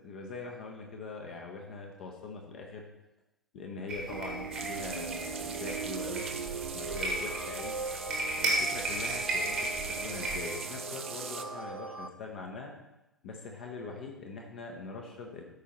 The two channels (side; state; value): both; normal; correlation 0.39